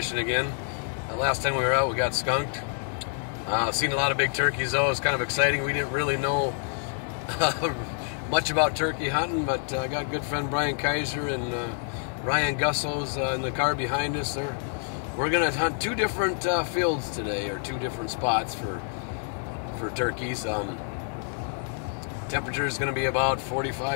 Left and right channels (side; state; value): right; silent; 60 dB below the other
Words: again. Last time we were out we got skunked. Seen a lot of big turkeys though. It's kind of exciting. We didn't really know much about turkey hunting, but I got good friend Brian Kaiser and Ryan Gusso's in the car behind us. We're going to hunt two different fields today, or two different spots for turkeys. Temperature is going to be about